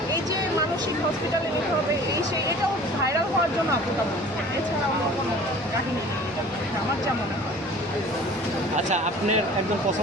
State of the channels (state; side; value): normal; both; correlation 0.45